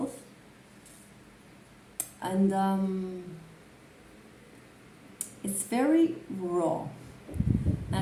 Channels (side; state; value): both; identical; correlation 1.00